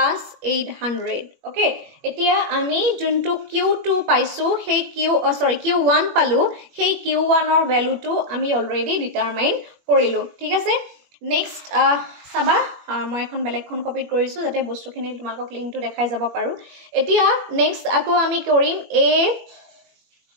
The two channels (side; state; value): left; late; 21 ms